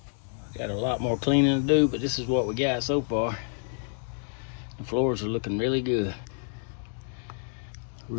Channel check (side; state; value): right; silent; 59 dB below the other